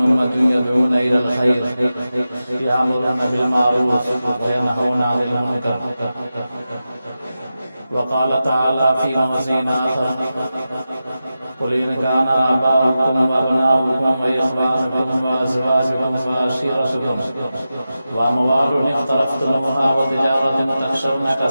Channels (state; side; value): inverted; both; correlation -0.92